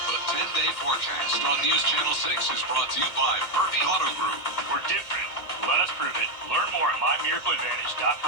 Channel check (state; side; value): late; right; 1.8 ms